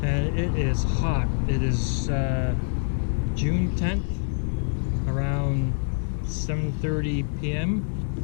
And it is hot. It is June 10th, around 7:30 p.m.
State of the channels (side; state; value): right; silent; digital silence